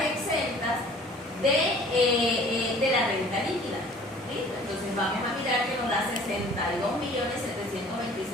exentas de la renta líquida. ¿Listo? Entonces vamos a mirar que nos da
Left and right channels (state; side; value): normal; both; correlation 0.50